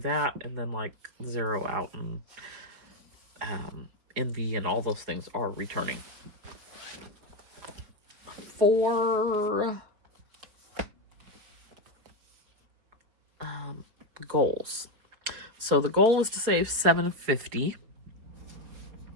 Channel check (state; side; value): late; left; 4.7 ms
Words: and then like zero out and Envy and all those things are returning. For goals. So the goal is to save $750.